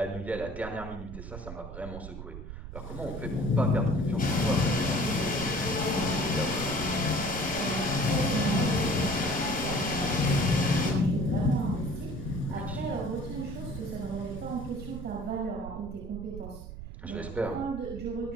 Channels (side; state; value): right; noise; rumble, 10 dB below the sound